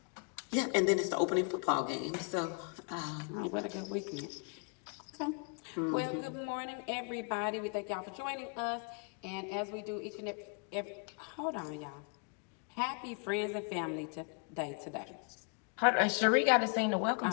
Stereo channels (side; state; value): right; quieter; 37.9 dB